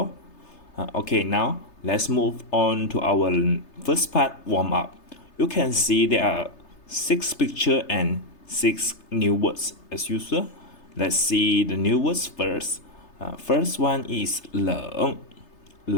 Okay, now let's move on to our first part, warm up. You can see there are 6 pictures and 6 new words as usual. Let's see the new words first. First one is 冷,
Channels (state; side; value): late; right; 3.3 ms